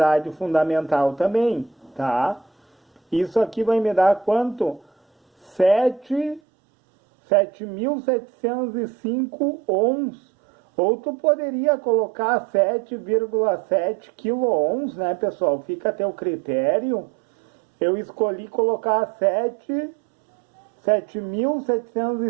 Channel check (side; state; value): left; drops out; at 6.4 s